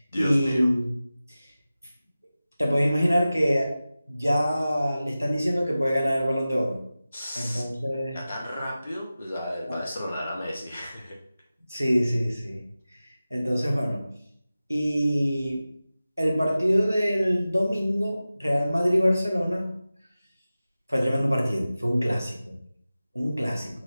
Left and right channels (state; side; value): inverted; both; correlation -0.95